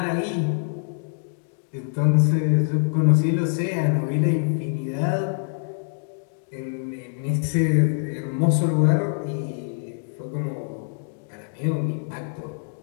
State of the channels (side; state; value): right; silent; digital silence